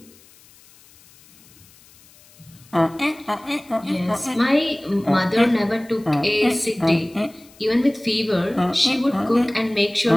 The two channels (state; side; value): noise; left; hiss, 26 dB below the sound